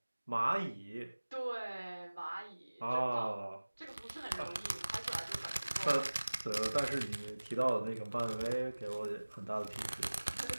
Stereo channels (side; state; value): both; inverted; correlation -1.00